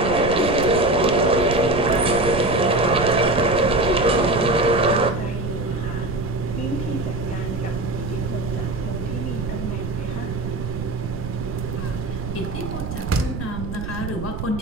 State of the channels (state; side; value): noise; right; rumble, 6 dB below the sound